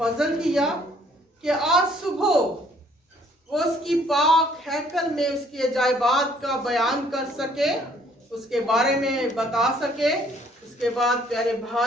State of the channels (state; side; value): normal; both; correlation 0.62